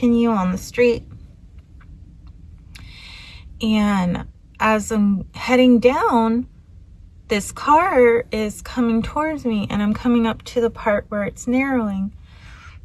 on the street. And as I'm heading down, this car is coming towards me, and I'm coming up to the part where it's narrowing.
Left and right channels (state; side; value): identical; both; correlation 1.00